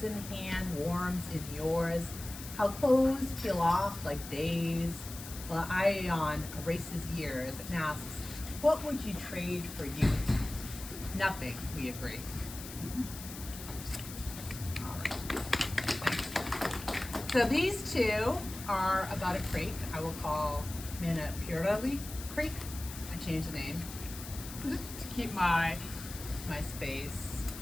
hand warms in yours, how clothes peel off like days, while Ion erases years and asks, what would you trade for youth? Nothing, we agree. All right. So these two are about a creek I will call Manapurali Creek. I changed the name to keep my space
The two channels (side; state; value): left; noise; hiss, 12 dB below the sound